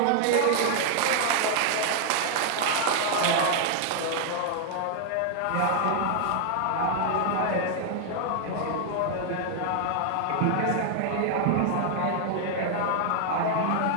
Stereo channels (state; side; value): different; both; correlation 0.00